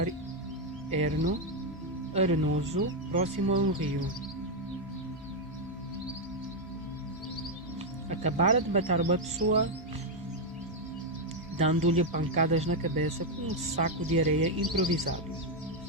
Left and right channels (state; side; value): normal; both; correlation 0.02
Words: arenoso, próximo a um rio. Acabara de matar uma pessoa, dando-lhe pancadas na cabeça com um saco de areia improvisado.